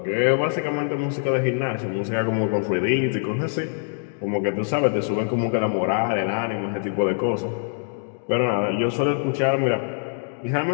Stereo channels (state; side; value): silent; right; digital silence